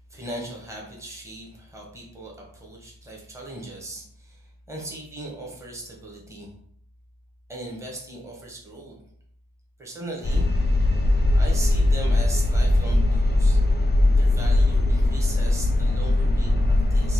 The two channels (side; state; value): both; normal; correlation 0.92